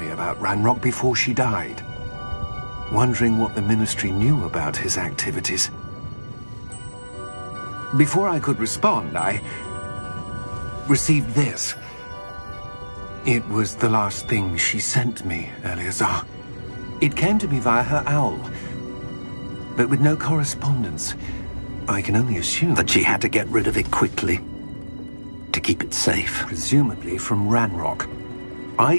about Ranrock before she died, wondering what the Ministry knew about his activities. Before I could respond, I received this. It was the last thing she sent me, Eleazar. It came to me via her owl, but with no correspondence. I can only assume That she had to get rid of it quickly, to keep it safe. presumably from Ranrock. I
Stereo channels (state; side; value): inverted; both; correlation -1.00